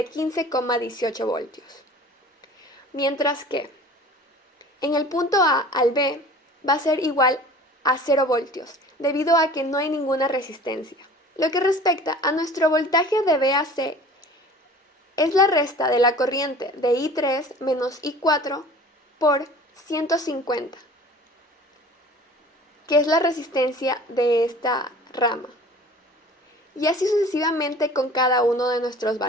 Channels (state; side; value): normal; both; correlation 0.44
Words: 15,18 voltios. Mientras que en el punto A al B va a ser igual a 0 voltios, debido a que no hay ninguna resistencia. Lo que respecta a nuestro voltaje de B a C, es la resta de la corriente de I3 menos I4 por 150, que es la resistencia de esta rama. Y así sucesivamente con cada uno de nuestros